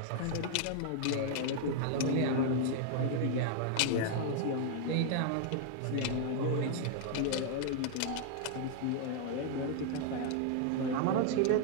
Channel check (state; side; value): different; both; correlation 0.00